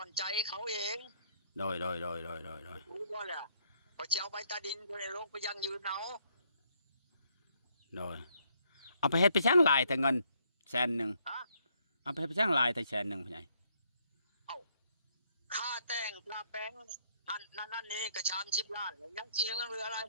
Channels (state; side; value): inverted; both; correlation -0.69